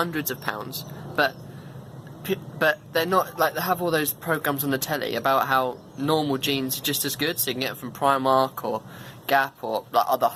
of pounds, but they're not like, they have all those programs on the telly about how normal jeans are just as good, so you can get them from Primark or Gap or like other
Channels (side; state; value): both; identical; correlation 1.00